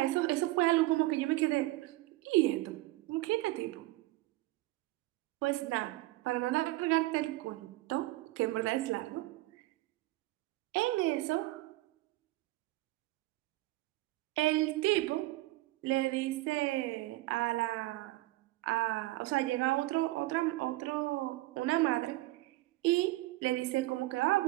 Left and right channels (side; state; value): left; quieter; 19.0 dB